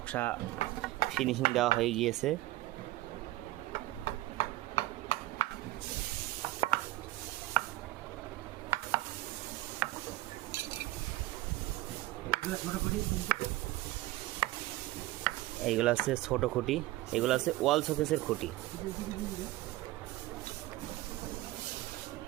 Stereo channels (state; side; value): quieter; left; 17.3 dB